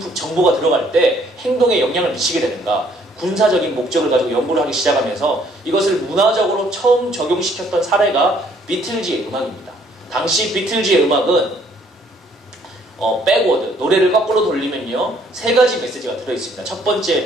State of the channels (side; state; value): both; normal; correlation 0.63